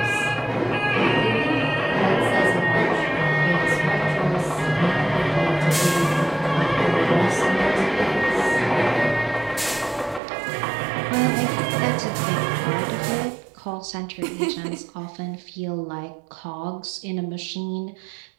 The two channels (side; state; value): left; drops out; at 10.2 s